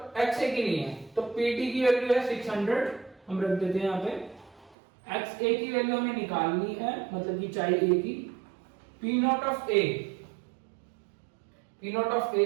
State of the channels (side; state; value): left; drops out; at 4.8 s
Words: एक्स ए की नहीं है। तो पीटी की वैल्यू है 600, हम रख देते हैं यहाँ पे। एक्स ए की वैल्यू हमें निकालनी है, मतलब कि चाहे ए की। P naught of A, P naught of A